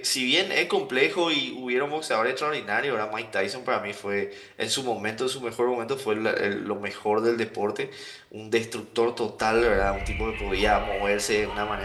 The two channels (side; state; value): both; identical; correlation 1.00